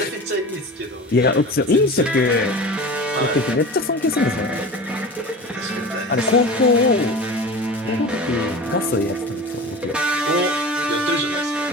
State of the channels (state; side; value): normal; both; correlation 0.34